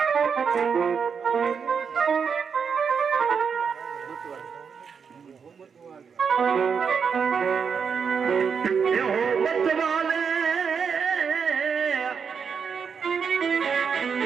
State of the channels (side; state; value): left; quieter; 6.3 dB